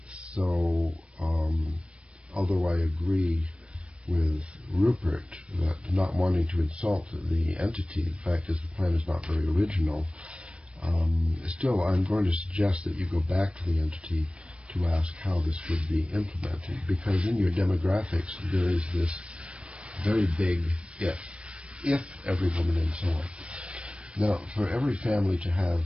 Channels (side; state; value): left; late; 0.059 ms